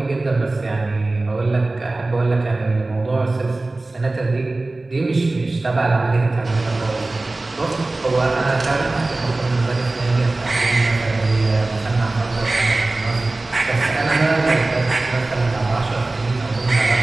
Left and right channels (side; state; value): left; quieter; 3.1 dB